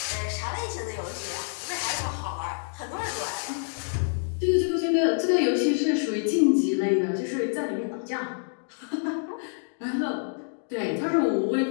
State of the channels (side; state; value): right; silent; digital silence